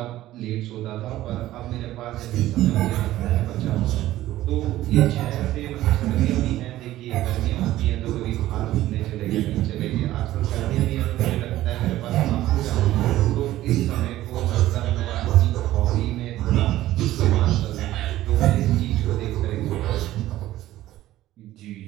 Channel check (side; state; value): left; quieter; 14.9 dB